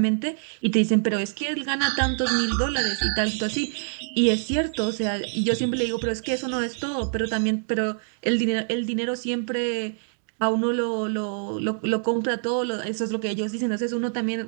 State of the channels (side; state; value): left; silent; digital silence